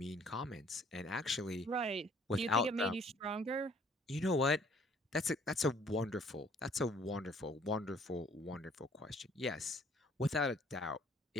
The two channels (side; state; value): both; normal; correlation 0.58